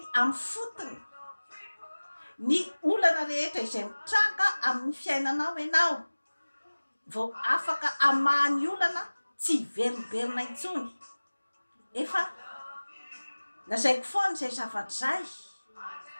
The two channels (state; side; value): inverted; both; correlation -1.00